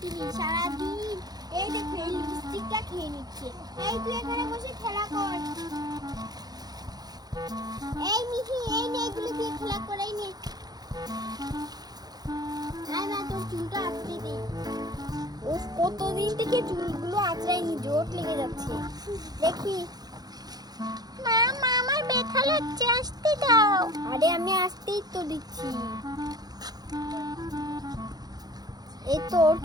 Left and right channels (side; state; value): left; late; 0.19 ms